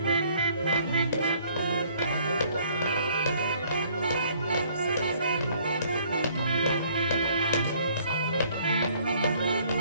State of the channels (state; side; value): inverted; both; correlation -0.60